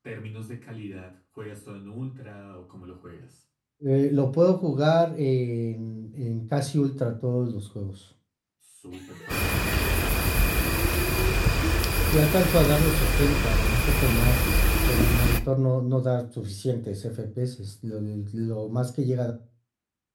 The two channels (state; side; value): identical; both; correlation 1.00